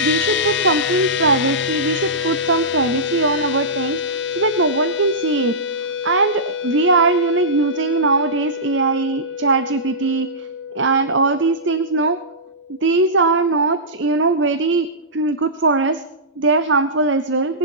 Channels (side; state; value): both; normal; correlation -0.17